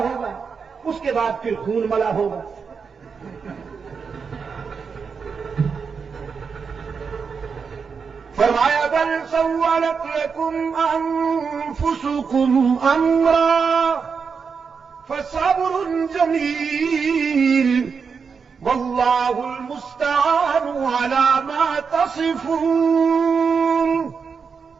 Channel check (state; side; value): quieter; left; 5.7 dB